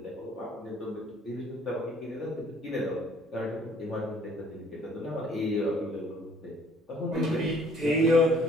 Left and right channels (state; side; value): normal; both; correlation 0.58